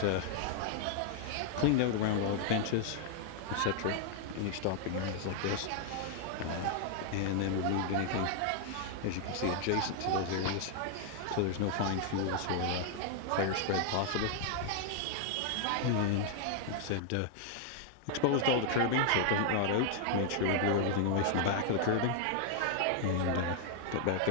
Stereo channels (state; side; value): different; both; correlation -0.01